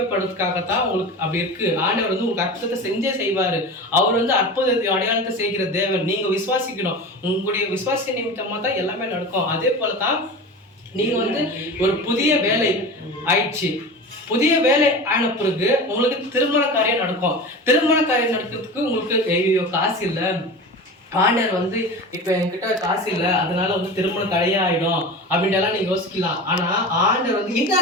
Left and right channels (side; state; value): both; normal; correlation 0.31